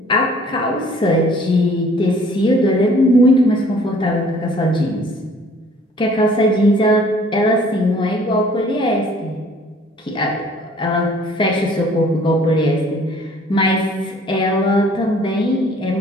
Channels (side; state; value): both; normal; correlation 0.55